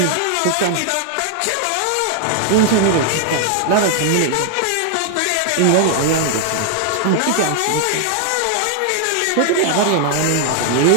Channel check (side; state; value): both; different; correlation 0.00